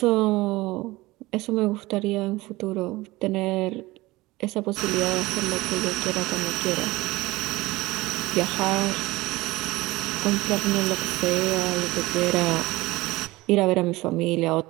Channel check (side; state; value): left; quieter; 20.1 dB